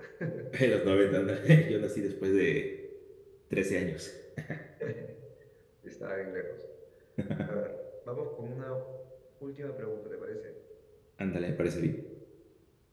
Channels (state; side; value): identical; both; correlation 1.00